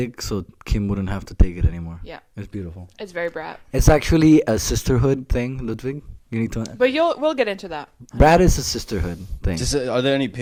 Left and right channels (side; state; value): both; identical; correlation 1.00